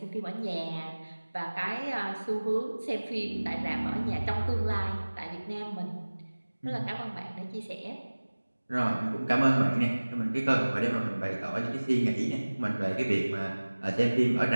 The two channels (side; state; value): both; inverted; correlation -1.00